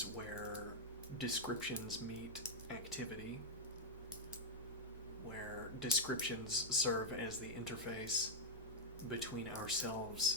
where descriptions meet activity, where descriptions serve as the interface between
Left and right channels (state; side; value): normal; both; correlation -0.04